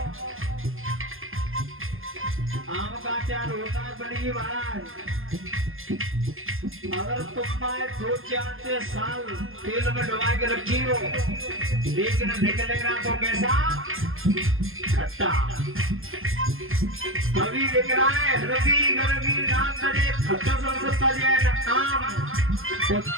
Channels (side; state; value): left; late; 0.60 ms